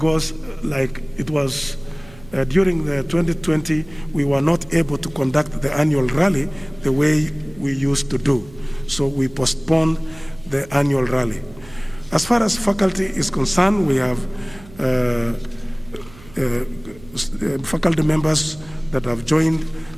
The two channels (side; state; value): right; noise; hum, 21 dB below the sound